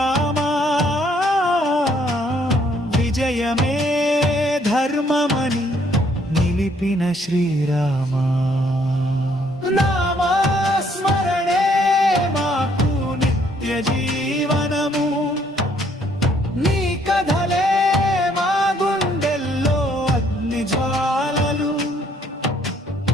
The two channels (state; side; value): normal; both; correlation 0.66